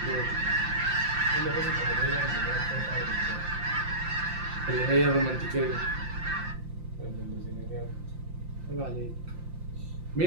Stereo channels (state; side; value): late; left; 5.8 ms